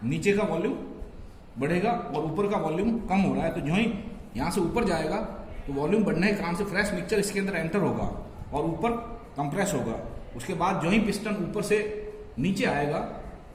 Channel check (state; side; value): identical; both; correlation 1.00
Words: नीचे का वॉल्यूम बढ़ेगा और ऊपर का वॉल्यूम कम हो रहा है। तो जो ही यहां से ऊपर जाएगा तो वॉल्यूम बढ़ने के कारण से फ्रेश मिक्सचर इसके अंदर एंटर होगा और ऊपर कंप्रेस होगा। उसके बाद जो ही पिस्टन ऊपर से नीचे आएगा